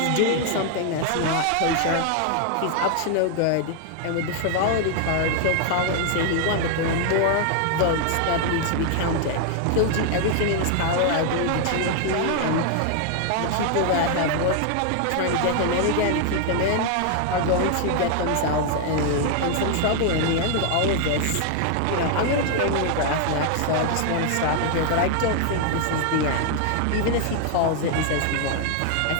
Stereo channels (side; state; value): both; different; correlation 0.00